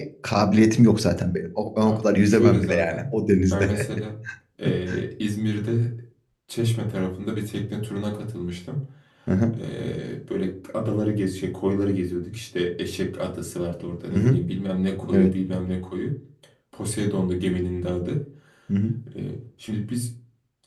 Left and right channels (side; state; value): both; identical; correlation 1.00